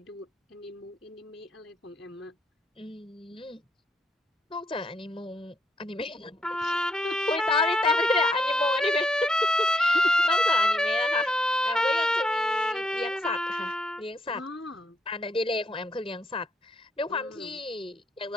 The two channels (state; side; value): normal; both; correlation 0.75